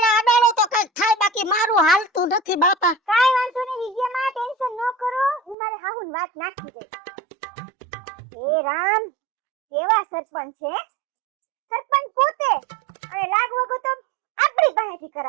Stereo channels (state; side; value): drops out; left; at 5.6 s